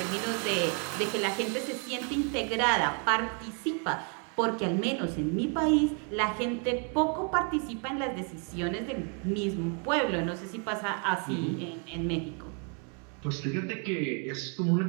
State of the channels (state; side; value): quieter; left; 39.8 dB